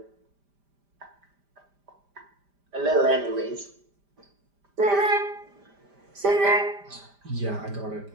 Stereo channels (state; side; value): late; left; 5.0 ms